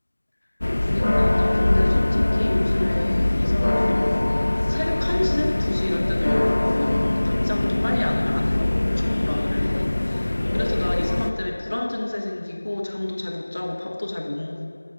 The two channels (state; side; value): inverted; both; correlation -1.00